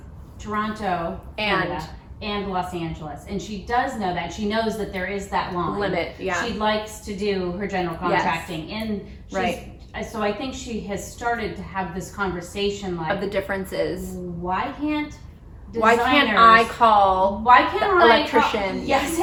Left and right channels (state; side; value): identical; both; correlation 1.00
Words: Toronto, And- Canada, and Los Angeles. And she does know that. She knows that there is that line. Limit, yeah. She likes to do her general Yes. contracting. And she's, Right. so I think she has started to have this conversation like, Of the differences. why can't Why designers, can't I call why can't the I electrician? yes,